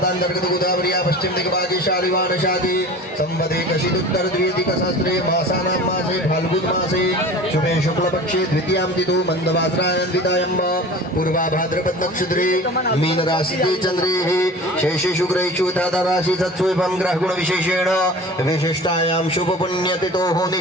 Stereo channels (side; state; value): both; normal; correlation 0.39